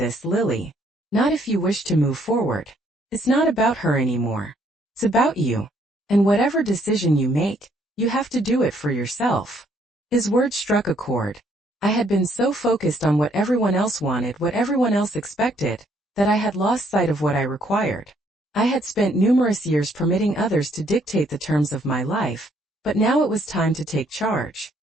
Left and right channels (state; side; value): normal; both; correlation 0.67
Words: Lily. Not if you wish to move forward. It's not about her anymore. It's about you. And whatever decision you make, you have to do it for yourself." His words struck a chord. I had been so focused on what everyone else wanted, what everyone else expected, that I had lost sight of what I required. I had spent numerous years permitting others to dictate the terms of my life, but now it was time to take charge.